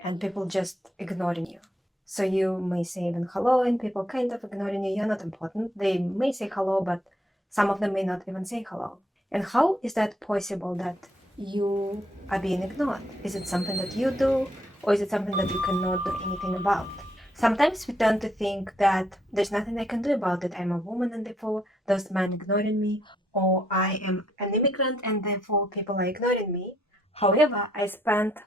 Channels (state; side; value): normal; both; correlation 0.72